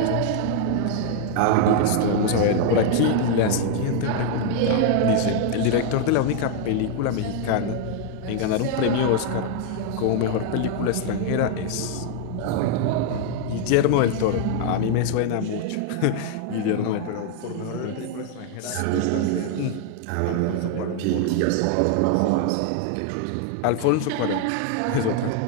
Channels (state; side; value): different; both; correlation 0.00